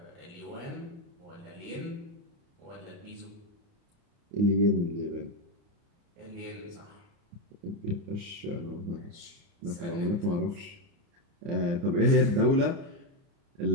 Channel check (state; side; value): late; left; 29 ms